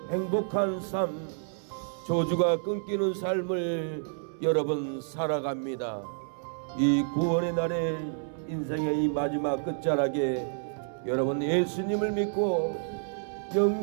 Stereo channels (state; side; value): silent; left; 58 dB below the other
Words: 행복한 삶 저주가 끊기는 삶을 여러분 살아갑니다. 이 구원의 날에 인생의 이 마지막 끝자락에 여러분 예수님을 믿고